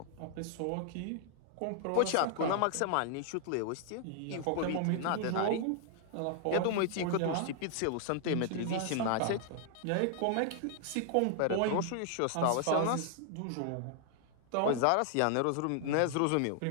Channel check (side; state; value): both; different; correlation 0.00